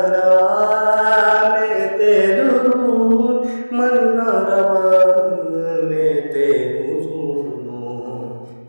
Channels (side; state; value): both; inverted; correlation -1.00